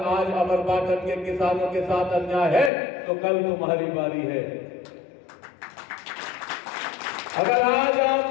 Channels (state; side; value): drops out; right; at 2.7 s